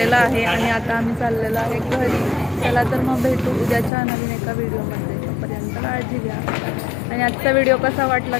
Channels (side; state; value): right; drops out; at 3.9 s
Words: आहे आणि आता आम्ही चाललेलो आहे घरी. चला तर मग भेटू उद्याच्या नवीन एका व्हिडिओमध्ये. तोपर्यंत काळजी घ्या आणि आजचा व्हिडिओ कसा वाटला